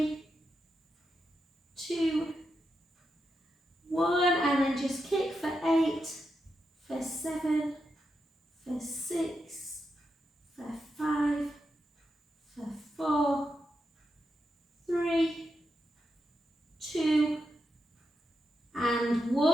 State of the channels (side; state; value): both; normal; correlation 0.86